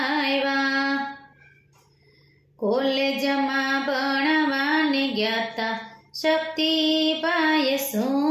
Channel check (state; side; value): identical; both; correlation 1.00